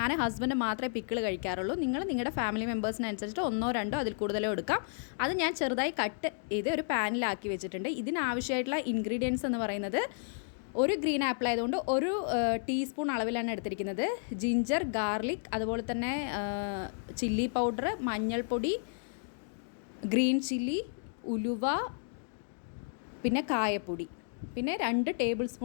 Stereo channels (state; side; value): silent; right; digital silence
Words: ഹസ്ബൻഡ് മാത്രമേ പിക്കിൾ കഴിക്കാറുള്ളൂ. നിങ്ങളുടെ ഫാമിലി മെമ്പേഴ്സിനനുസരിച്ചിട്ട് ഒന്നോ രണ്ടോ അതിൽ കൂടുതലോ എടുക്കാം. അത് ഞാൻ ചെറുതായി കട്ട് ചെയ്ത് ഒരു പാനിലാക്കി വെച്ചിട്ടുണ്ട്. ഇതിനാവശ്യമായിട്ടുള്ള ഇൻഗ്രീഡിയൻസ് എന്ന് പറയുന്നത്, ഒരു ഗ്രീൻ ആപ്പിൾ ആയതുകൊണ്ട് ഒരു ടീസ്പൂൺ അളവിലാണ് എടുത്തിരിക്കുന്നത്. ജിഞ്ചർ, ഗാർലിക്, അതുപോലെ തന്നെ ചില്ലി പൗഡർ, മഞ്ഞൾപ്പൊടി, ഗ്രീൻ ചില്ലി, ഉലുവ, പിന്നെ കായപ്പൊടി, പിന്നെ 2 ടേബിൾ